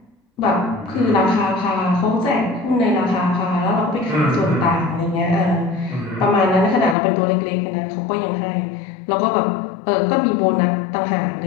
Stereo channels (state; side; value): drops out; right; at 7.0 s